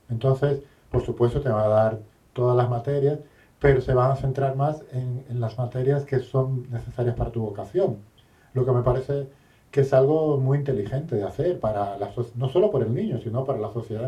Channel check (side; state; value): both; identical; correlation 1.00